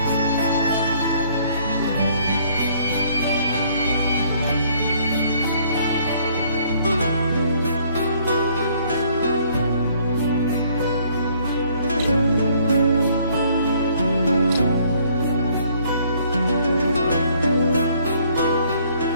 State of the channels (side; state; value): both; inverted; correlation -0.62